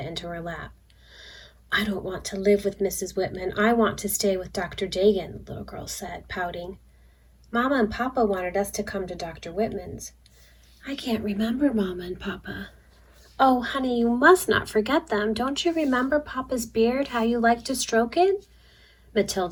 into her lap. "I don't want to live with Mrs. Whitman. I want to stay with Dr. Dagan," the little girl said, pouting. "Mama and Papa wanted us to come to Dr. Whitman's." "I can't remember Mama and Papa." "Oh, honey, you must not forget them. Don't you remember Papa's beard, how you liked to stroke it?"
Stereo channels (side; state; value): both; identical; correlation 1.00